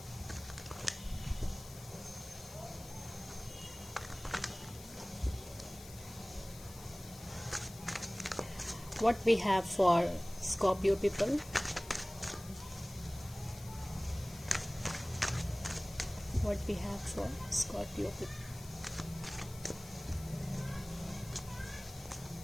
What we have for Scorpio people? What we have for Scorpio people?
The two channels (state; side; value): noise; left; hiss, 16 dB below the sound